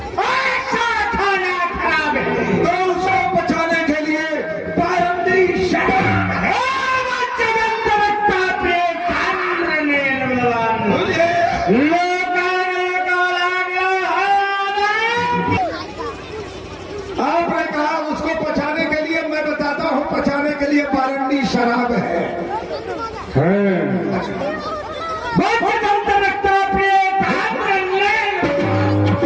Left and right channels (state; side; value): identical; both; correlation 1.00